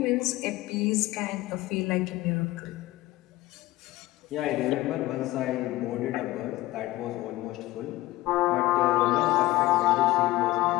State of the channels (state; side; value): quieter; right; 17.5 dB